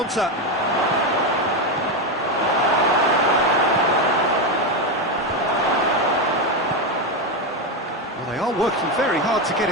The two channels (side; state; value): both; normal; correlation 0.10